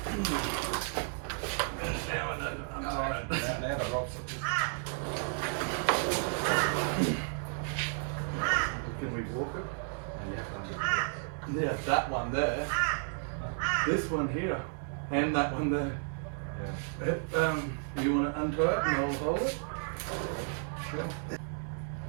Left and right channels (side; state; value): left; silent; 56 dB below the other